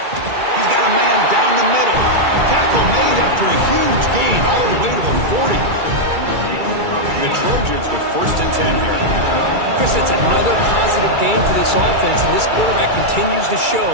He's got a man down the middle. Tackle made after a huge gain all the way to the 40. The Trojans with first and 10 here. Chris, that's another positive gain for this offense, and this quarterback continues to show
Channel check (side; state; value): left; late; 2.3 ms